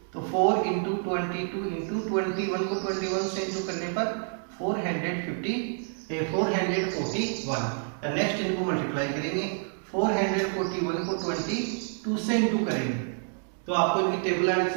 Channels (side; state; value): left; silent; 55 dB below the other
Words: तो 4 इंटू 22 इंटू 21 को 21 से इंटू करने पर 441। नेक्स्ट इनको मल्टीप्लाई करेंगे, 441 को 22 से इंटू करेंगे तो आपको इनकी टेबल आनी